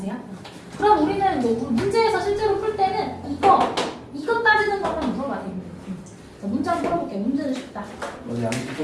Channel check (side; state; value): both; identical; correlation 1.00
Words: 그럼 우리는 뭐 문제에서 실제로 풀 때는 이거 따지는 것만 물어봐야 됩니다. 자, 문제 한번 풀어볼게요. 문제는 쉽다. 오늘 양쪽도